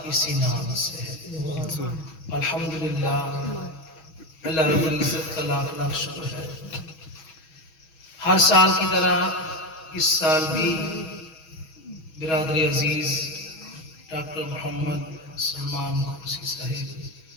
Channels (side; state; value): right; late; 6.3 ms